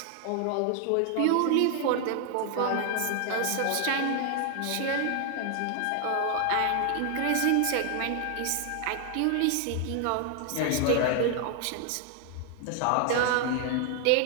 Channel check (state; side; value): different; both; correlation 0.00